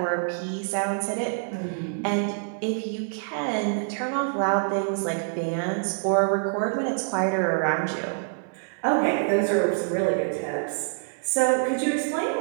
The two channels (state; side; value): silent; left; digital silence